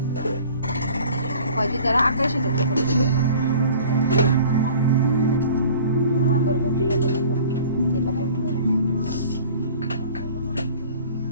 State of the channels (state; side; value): inverted; both; correlation -0.46